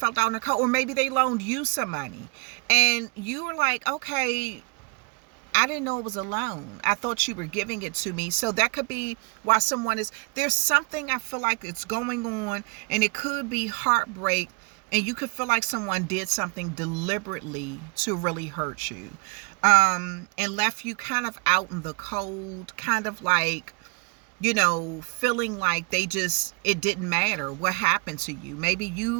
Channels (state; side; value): quieter; left; 33.8 dB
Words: out in the cold. Or maybe they loaned you some money and you were like, okay, I didn't know it was a loan. I thought you were giving it to me. So that could be why there's something I feel like it's going on, and it could be heartbreak, and you could feel like someone did something deliberately to really hurt you, and left you kind of out in the cold, kind of like, you know, feeling like it didn't matter what happened to you. Maybe